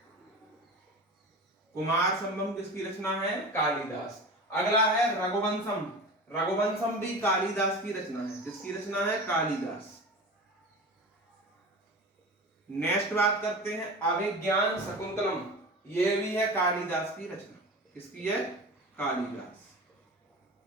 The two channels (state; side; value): normal; both; correlation 0.32